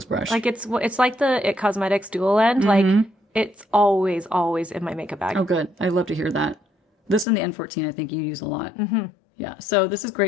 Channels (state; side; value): drops out; right; at 7.2 s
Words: brush. Like it's like the It Cosmetics dual end. Like it's always in my makeup bag. Oh, good. I love to hear that. This and the N14, I think you use a lot. Yeah. So this is